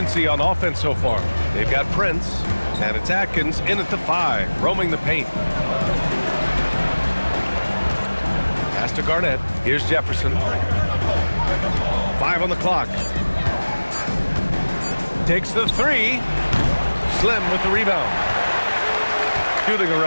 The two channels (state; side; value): inverted; both; correlation -1.00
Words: on offense so far. They've got Prince, and it's Atkins in at the 5, roaming the paint. Pass to Garnett. Here's Jefferson. 5 on the clock. Takes the 3. Slim with the rebound. Shooting